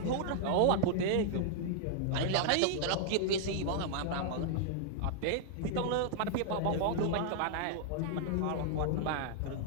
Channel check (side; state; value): both; different; correlation -0.01